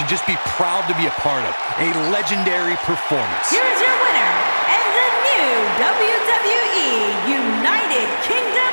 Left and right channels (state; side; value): inverted; both; correlation -1.00